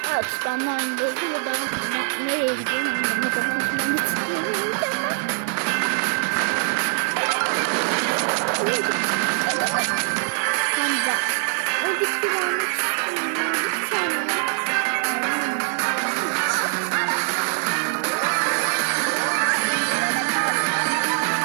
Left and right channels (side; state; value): left; silent; 57 dB below the other